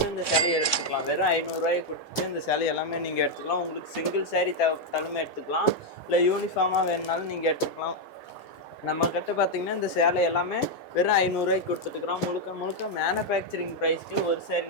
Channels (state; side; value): late; right; 3.6 ms